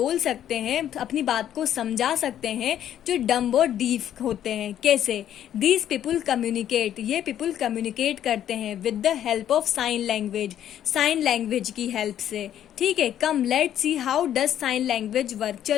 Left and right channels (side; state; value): right; quieter; 10.8 dB